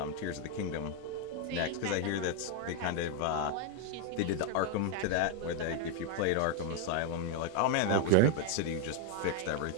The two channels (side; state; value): both; different; correlation 0.01